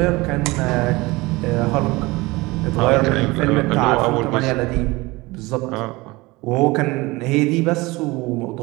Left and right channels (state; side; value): quieter; left; 22.2 dB